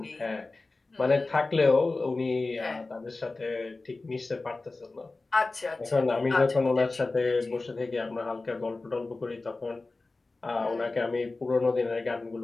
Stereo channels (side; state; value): right; quieter; 3.4 dB